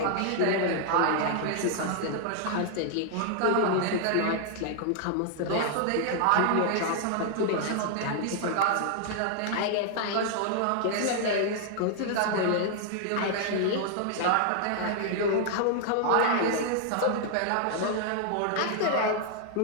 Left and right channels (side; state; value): both; different; correlation -0.01